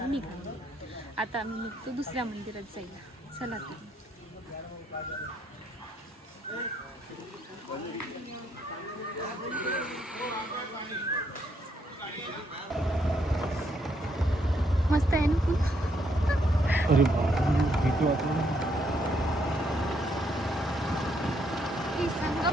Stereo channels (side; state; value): both; normal; correlation 0.73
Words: निघा. आता आम्ही निघतो दुसऱ्या मंदिरात जायला. चला तुम्ही. मस्त आहे ना फुल. अरे भीती वाटली. ही